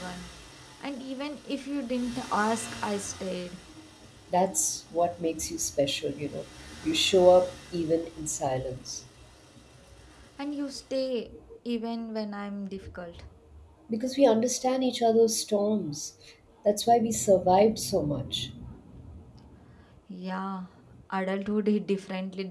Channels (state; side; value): identical; both; correlation 1.00